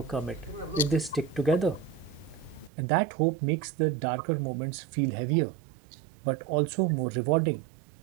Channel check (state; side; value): drops out; left; at 2.7 s